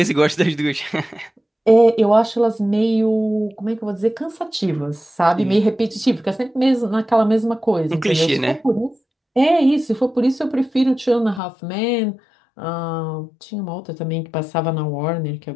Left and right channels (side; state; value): right; drops out; at 11.4 s